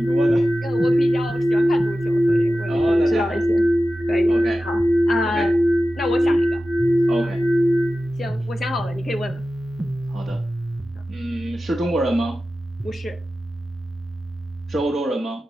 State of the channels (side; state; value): both; normal; correlation 0.94